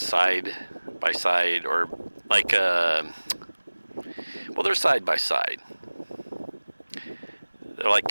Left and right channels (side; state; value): both; inverted; correlation -1.00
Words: by side, or like a, well, they're side by side. They're like